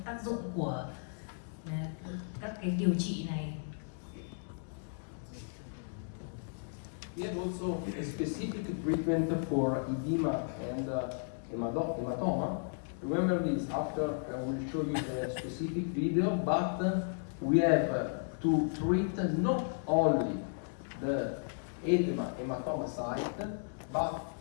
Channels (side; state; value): right; silent; digital silence